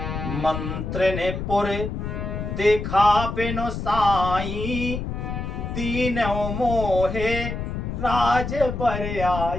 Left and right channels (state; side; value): noise; left; rumble, 4 dB below the sound